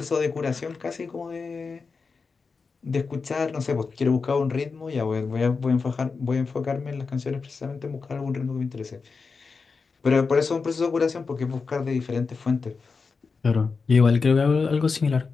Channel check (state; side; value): quieter; right; 4.7 dB